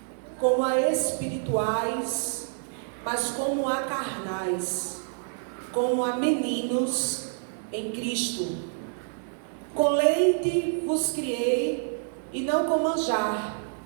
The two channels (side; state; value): left; silent; digital silence